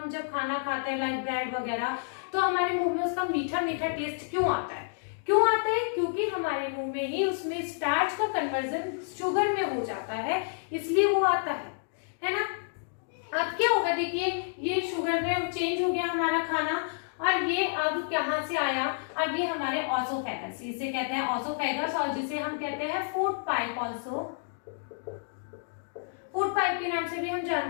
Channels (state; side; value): silent; right; digital silence